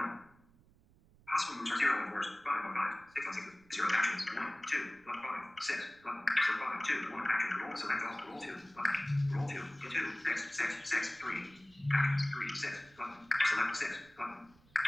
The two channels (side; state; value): right; noise; rumble, 29 dB below the sound